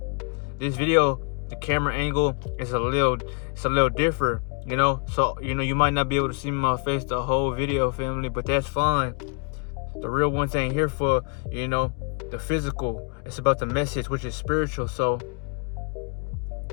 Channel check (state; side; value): quieter; right; 36.8 dB